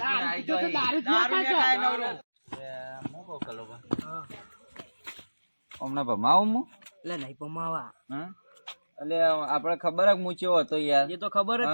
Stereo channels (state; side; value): inverted; both; correlation -1.00